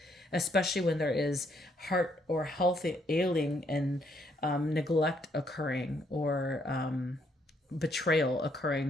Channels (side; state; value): both; normal; correlation 0.71